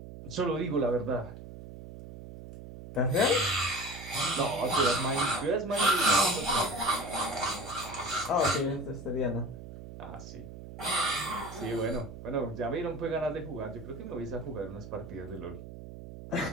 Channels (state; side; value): noise; right; hum, 13 dB below the sound